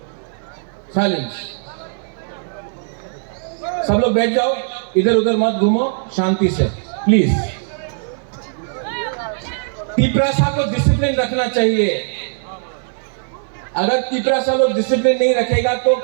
साइलेंस। सब लोग बैठ जाओ, इधर उधर मत घूमो, शांति से प्लीज। तिपरासा को डिसिप्लिन रखना चाहिए। अगर तिपरासा लोग डिसिप्लिन नहीं रखेगा तो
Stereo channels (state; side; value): silent; left; 61 dB below the other